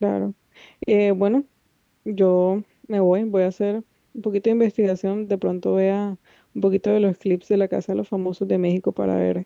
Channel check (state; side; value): identical; both; correlation 1.00